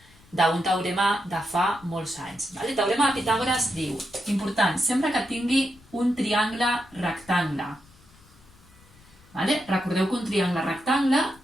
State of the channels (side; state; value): left; noise; rumble, 27 dB below the sound